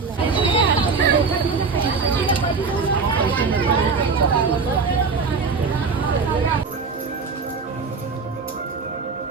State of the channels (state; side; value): quieter; left; 4.8 dB